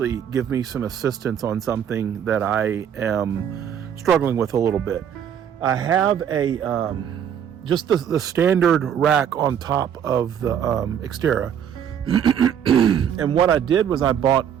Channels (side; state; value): left; quieter; 8.8 dB